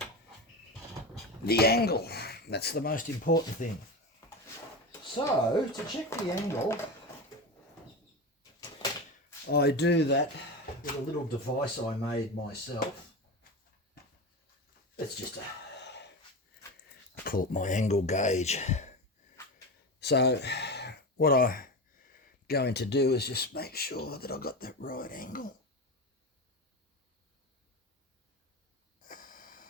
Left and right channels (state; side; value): normal; both; correlation 0.22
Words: the angle? That's the most important thing. So, to check the angle, I do that with a little device I made myself. It's just I call it my angle gauge. So what I'm going to do is just make sure that I got that right angle.